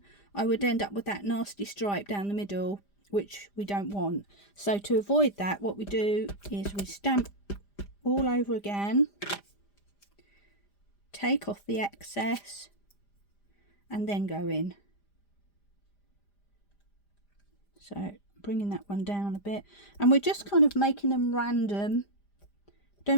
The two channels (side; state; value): right; late; 5.0 ms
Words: I would end up with that nasty stripe down the middle, which we don't want. So to avoid that, what we do is we stamp all over again, take off the excess, and then go in. So bringing that one down a bit, and we're just kind of making them random.